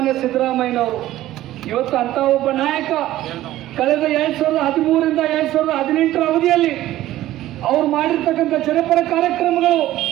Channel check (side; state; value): left; quieter; 14.7 dB